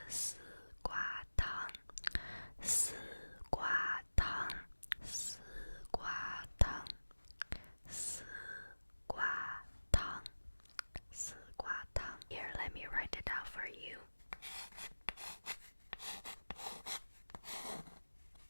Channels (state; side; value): inverted; both; correlation -1.00